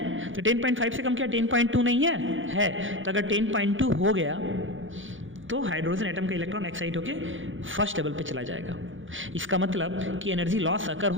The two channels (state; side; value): late; left; 0.57 ms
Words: तो 10.5 से कम क्या 10.2 नहीं है? तो अगर 10.2 हो गया तो हाइड्रोजन एटम का इलेक्ट्रॉन एक्साइट होके फर्स्ट लेवल पे चला जाएगा। इसका मतलब कि एनर्जी लॉस अगर